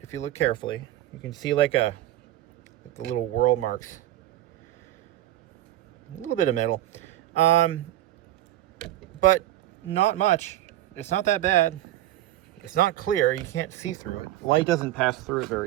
if you look carefully. You can see like the little whirl marks. A little bit of metal. But not much. It's not that bad. It's not clear. You can't see through it. Light doesn't pass through it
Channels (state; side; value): quieter; left; 14.2 dB